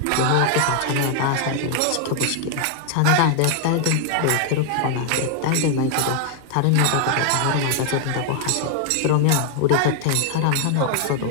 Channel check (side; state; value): both; different; correlation 0.00